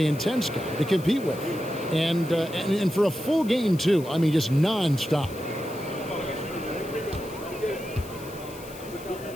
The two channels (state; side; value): noise; left; hiss, 18 dB below the sound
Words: intense guy to compete with. And for a full game, too. I mean, just nonstop.